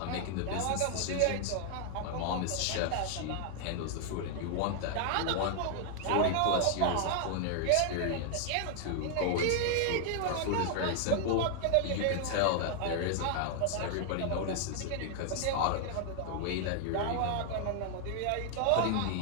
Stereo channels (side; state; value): both; different; correlation 0.00